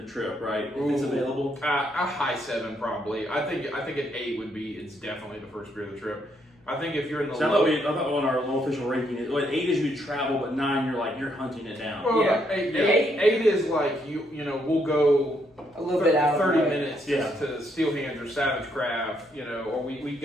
the trip, right? If it's Ooh. available. A high 7 probably. I think an 8 would be. It's definitely the first beer of the trip. I think if you're in the So low, I thought on our low official ranking, 8 is you travel, but 9 you're hunting it down. well, Yeah. 8 is like you know we'll go A little bit out of 30 the way. minutes Yeah. to Steel Hands or Savage Craft, or we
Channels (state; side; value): normal; both; correlation 0.74